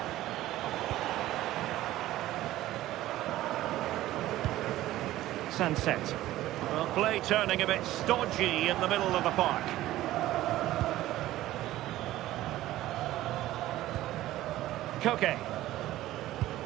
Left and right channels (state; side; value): quieter; left; 15.2 dB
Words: Sunset. Well, play turning a bit stodgy in the middle of the park. Koke.